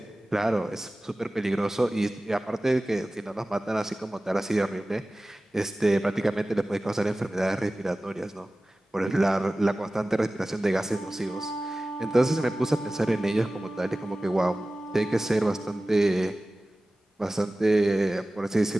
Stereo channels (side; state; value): both; normal; correlation 0.97